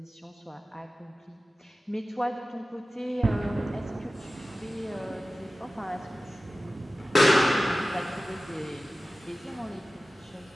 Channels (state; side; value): normal; both; correlation 0.95